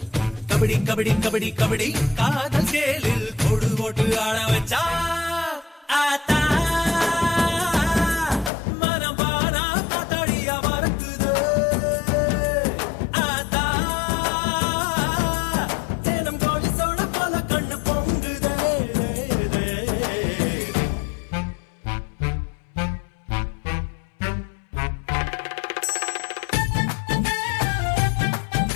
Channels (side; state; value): right; drops out; at 8.5 s